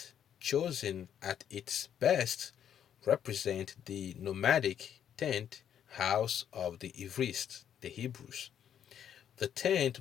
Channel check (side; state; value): right; quieter; 9.3 dB